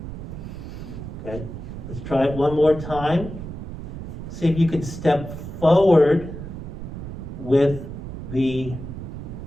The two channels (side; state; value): right; noise; rumble, 9 dB below the sound